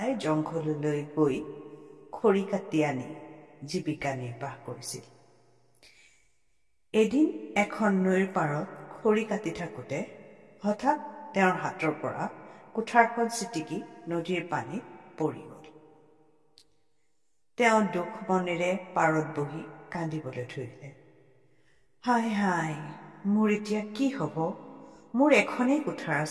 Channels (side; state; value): both; identical; correlation 1.00